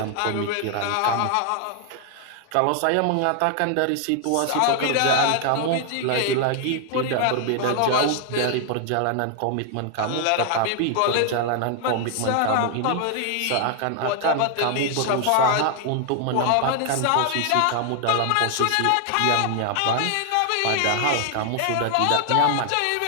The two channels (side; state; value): both; different; correlation 0.00